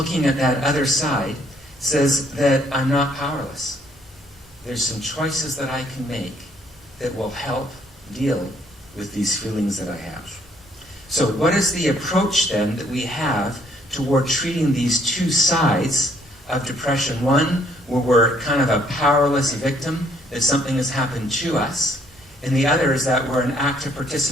at that other side says that I'm not powerless. There's some choices that I can make that will help deal with these feelings that I have. So what is the approach then that we have toward treating these two sides of depression? One, where we're kind of a powerless victim, that something has happened to us. And the other is that we're an active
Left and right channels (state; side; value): normal; both; correlation 0.66